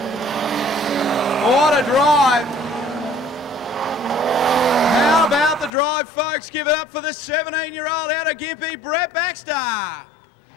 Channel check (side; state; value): right; drops out; at 5.7 s